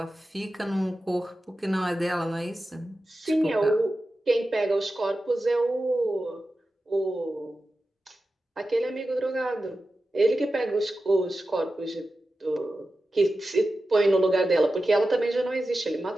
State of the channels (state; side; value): normal; both; correlation 0.93